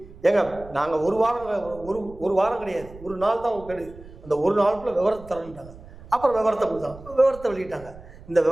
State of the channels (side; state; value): right; noise; rumble, 18 dB below the sound